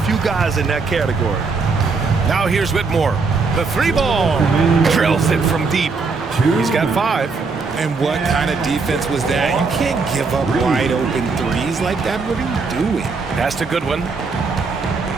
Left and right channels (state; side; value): quieter; left; 4.4 dB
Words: guys in that category. Now here's Whitmore. The three ball. Drills it from deep. He's got 5. And what kind of defense was that? You can't give up wide open threes like that. What are you doing? Pass to Goodwin.